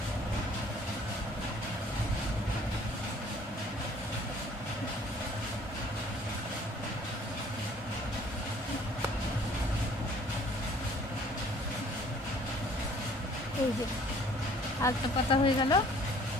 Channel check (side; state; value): both; normal; correlation 0.55